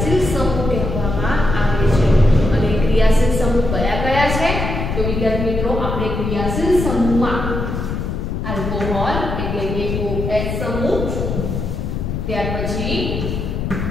સમૂહ કહેવામાં આવે છે. અને ક્રિયાશીલ સમૂહ કયા કયા છે? તો વિદ્યાર્થી મિત્રો આપણે ક્રિયાશીલ સમૂહમાં આલ્કોહોલ એટલે કે OH સમૂહ, ત્યાર પછી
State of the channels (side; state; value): left; noise; rumble, 3 dB below the sound